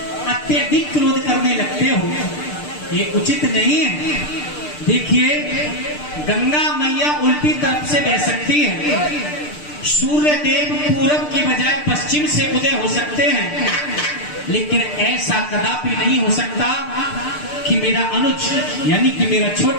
अत्यधिक क्रोध करने लगते हो, ये उचित नहीं है। देखिए, गंगा मैया उल्टी तरफ से बह सकती है, सूर्य देव पूरब की बजाय पश्चिम से उदय हो सकते हैं, लेकिन ऐसा कदापि नहीं हो सकता कि मेरा अनुज यानी कि मेरा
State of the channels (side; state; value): right; late; 6.7 ms